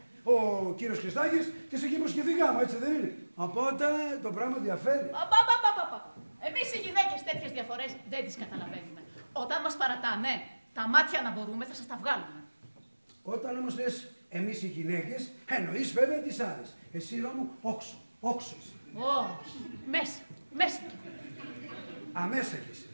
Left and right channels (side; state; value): both; inverted; correlation -1.00